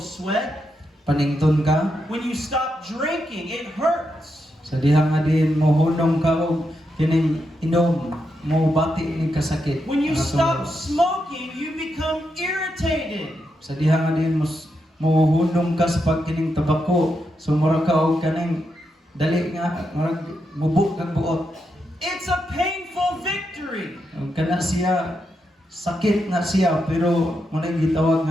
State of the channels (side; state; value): both; normal; correlation 0.84